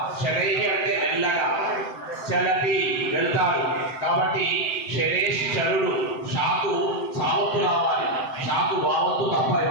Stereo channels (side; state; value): right; late; 7.8 ms